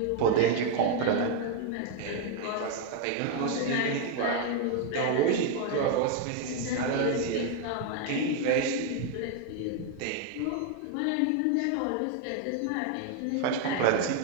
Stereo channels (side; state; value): both; different; correlation 0.01